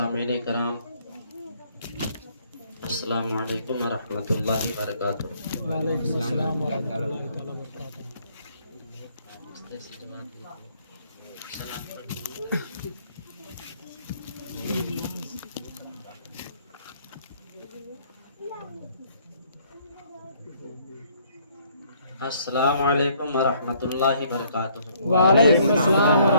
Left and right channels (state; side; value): inverted; both; correlation -0.64